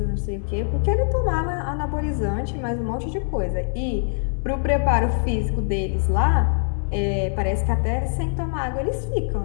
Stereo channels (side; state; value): right; silent; digital silence